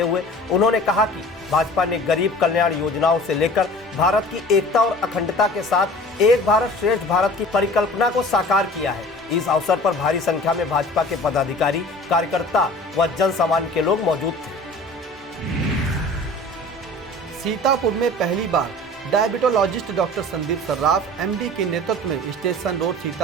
हुए उन्होंने कहा कि भाजपा ने गरीब कल्याण योजनाओं से लेकर भारत की एकता और अखंडता के साथ एक भारत श्रेष्ठ भारत की परिकल्पना को साकार किया है। इस अवसर पर भारी संख्या में भाजपा के पदाधिकारी, कार्यकर्ता व जन सामान्य के लोग मौजूद थे। सीतापुर में पहली बार diabetologist doctor Sandeep Sarraf MD के नेतृत्व में स्टेशन रोड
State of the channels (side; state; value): both; normal; correlation 0.43